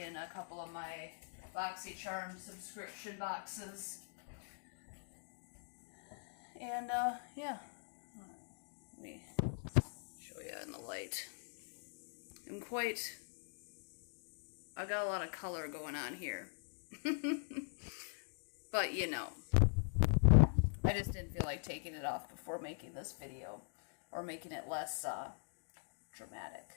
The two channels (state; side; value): silent; right; digital silence